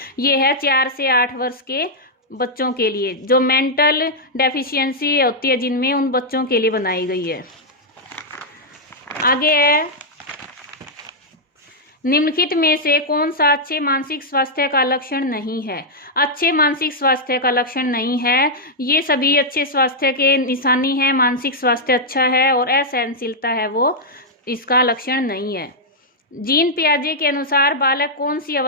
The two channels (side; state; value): both; normal; correlation -0.05